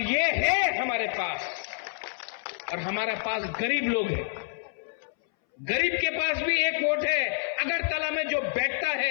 ये है हमारे पास। और हमारे पास गरीब लोग हैं, गरीब के पास भी एक वोट है। अगरतला में जो बैठता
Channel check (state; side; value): silent; right; 59 dB below the other